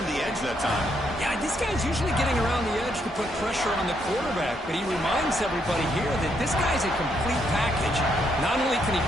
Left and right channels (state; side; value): normal; both; correlation 0.75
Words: the edge that time. Yeah, this guy's usually getting around the edge to put pressure on the quarterback, but he reminds everybody here that this guy's a complete package. Not only can he